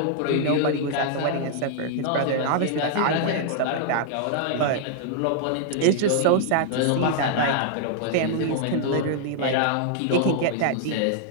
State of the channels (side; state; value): both; different; correlation -0.01